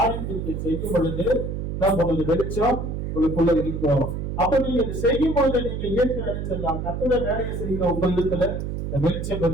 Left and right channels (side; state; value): right; noise; hum, 4 dB below the sound